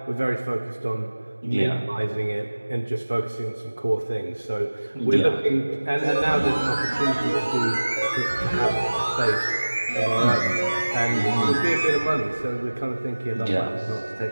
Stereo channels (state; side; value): inverted; both; correlation -1.00